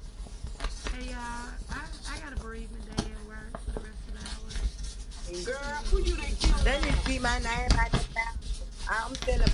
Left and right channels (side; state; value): both; identical; correlation 1.00